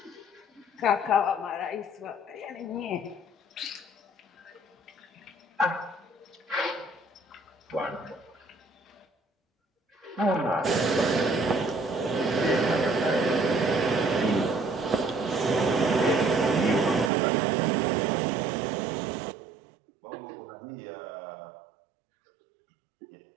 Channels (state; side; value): drops out; left; at 17.1 s